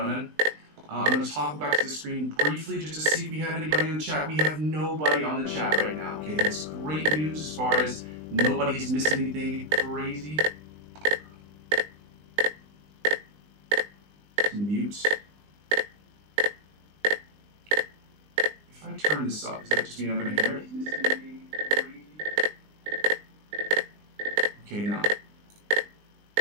I'm going to talk back to the screen briefly just to see if we have anybody in the chat. We have nobody on the chat right now. Okay, that's great news as far as nobody's missed anything crazy. Mute. I turn this up? Does that just mean I'm going to hear it? Okay, now.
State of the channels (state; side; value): late; left; 20 ms